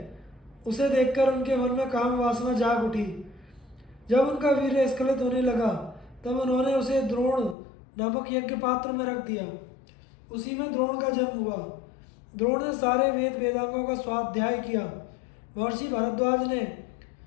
उसे देखकर उनके मन में काम वासना जाग उठी। जब उनका वीर्य स्खलित होने लगा तब उन्होंने उसे द्रोण नामक यज्ञ पात्र में रख दिया। उसी में द्रोण का जन्म हुआ। द्रोण ने सारे वेद वेदांगों का स्वाध्याय किया। महर्षि भारद्वाज ने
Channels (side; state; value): right; drops out; at 7.6 s